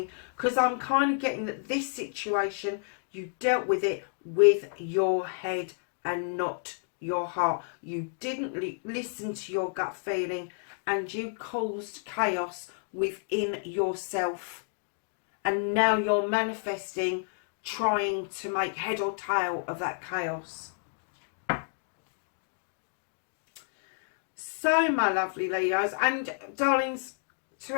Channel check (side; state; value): right; silent; digital silence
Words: Because I'm kind of getting that this situation, you dealt with it with your head and not your heart. You didn't listen to your gut feeling, and you caused chaos within yourself. And now you're manifesting, trying to make head or tail of that chaos. So, my lovely Leos and darlings, to